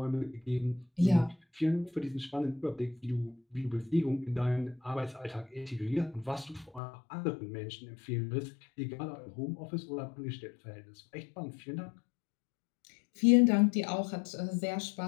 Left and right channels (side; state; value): right; drops out; at 6.8 s